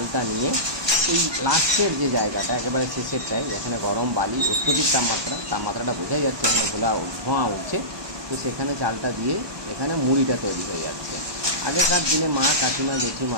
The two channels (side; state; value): left; late; 1.2 ms